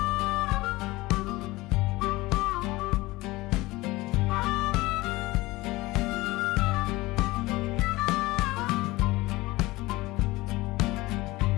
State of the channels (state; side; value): quieter; right; 20.2 dB